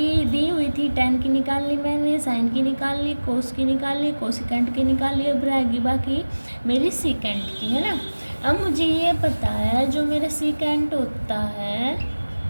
दी हुई थी 10 की निकाल ली मैंने, साइन की निकाल ली, कोस की निकाल ली, कोसिकेंट की निकाल ली, अब रहेगी बाकी मेरी सीकेंट की, है ना। अब मुझे ये पता है जो मेरा सीकेंट होता है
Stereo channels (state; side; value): inverted; both; correlation -1.00